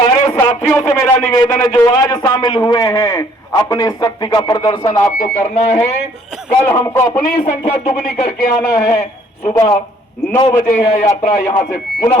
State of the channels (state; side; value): normal; both; correlation 0.61